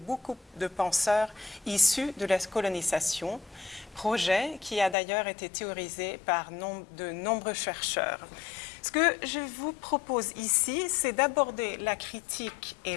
de penseurs issus de la colonisation, projet qui a d'ailleurs été théorisé par de nombreux chercheurs. Ce que je vous propose ici, c'est d'aborder la critique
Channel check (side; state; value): right; drops out; at 5.0 s